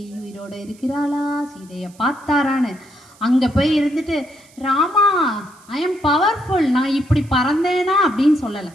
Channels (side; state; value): right; noise; hiss, 27 dB below the sound